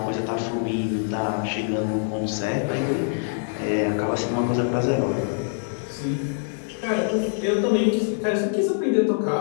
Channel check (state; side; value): silent; right; digital silence